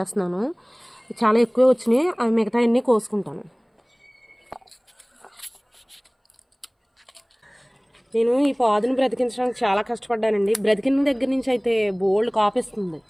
చాలా ఎక్కువ వచ్చినాయి, అవి మిగతా అన్నీ కోసుకుంటాను. నేను ఈ పాదును బ్రతికించడానికి చాలా కష్టపడ్డానండి. బ్రతికిన దగ్గర నుంచి అయితే బోల్డ్ కాపిస్తుంది.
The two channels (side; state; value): both; identical; correlation 1.00